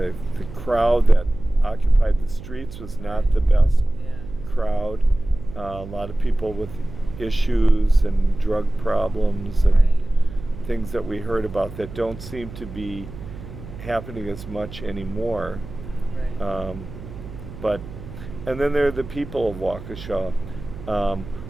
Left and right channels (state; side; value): noise; right; hum, 13 dB below the sound